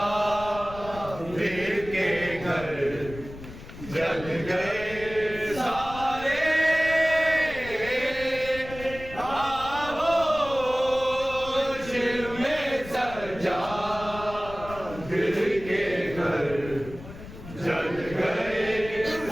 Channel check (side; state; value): left; noise; rumble, 14 dB below the sound